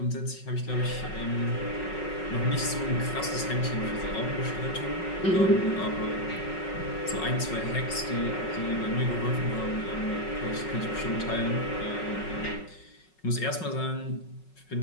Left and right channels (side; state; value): right; late; 5.4 ms